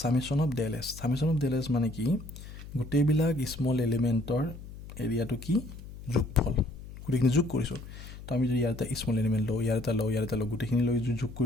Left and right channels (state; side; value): noise; left; hum, 14 dB below the sound